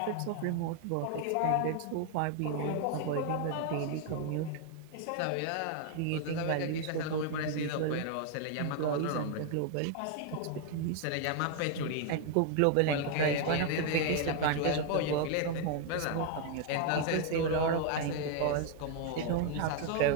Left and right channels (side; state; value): both; different; correlation 0.00